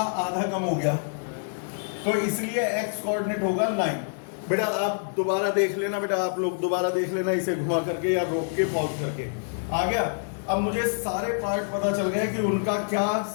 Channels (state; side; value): silent; right; digital silence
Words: आधा कम हो गया, तो इसलिए x कोऑर्डिनेट होगा 9। बेटा आप दोबारा देख लेना, बेटा आप लोग दोबारा देख लेना इसे घुमा करके या रोक के पॉज करके। आ गया? अब मुझे सारे पार्ट पता चल गए कि उनका क्या